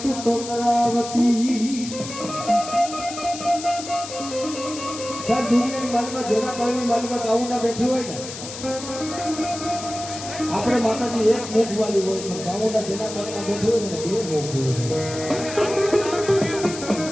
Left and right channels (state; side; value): noise; left; hiss, 10 dB below the sound